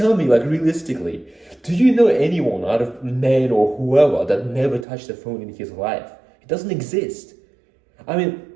me, like, realistically, do you know anyone out of men or whoever that never touched a phone in his life? It doesn't exist. I mean,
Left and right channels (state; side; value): drops out; left; at 4.9 s